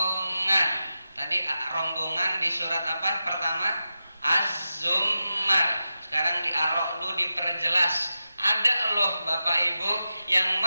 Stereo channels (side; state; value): both; inverted; correlation -0.91